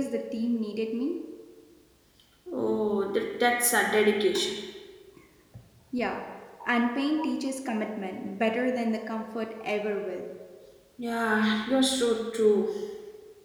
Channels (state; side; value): identical; both; correlation 1.00